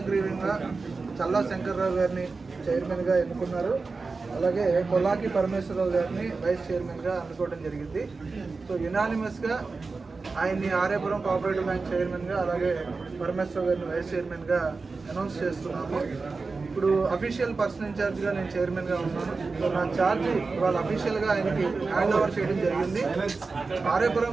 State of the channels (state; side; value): quieter; left; 4.1 dB